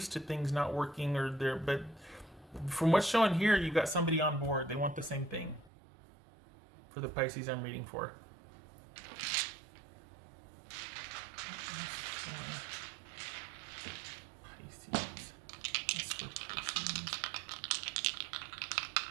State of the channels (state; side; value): drops out; left; at 5.7 s